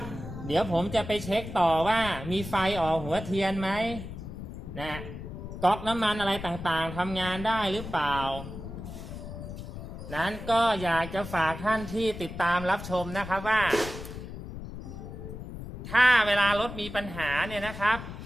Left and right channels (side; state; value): left; noise; rumble, 10 dB below the sound